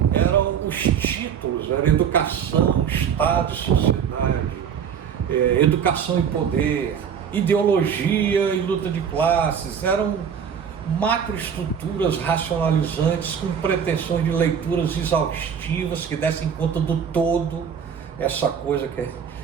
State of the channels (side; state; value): left; quieter; 7.6 dB